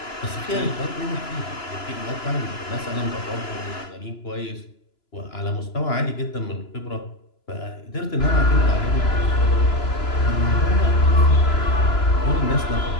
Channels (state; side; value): late; right; 2.9 ms